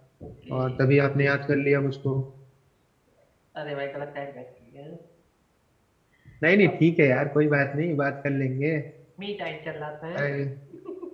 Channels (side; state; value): both; identical; correlation 1.00